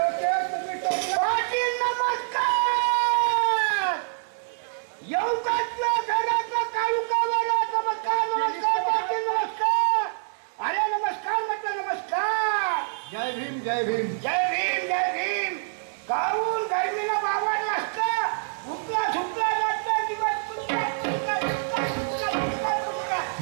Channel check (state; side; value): silent; left; digital silence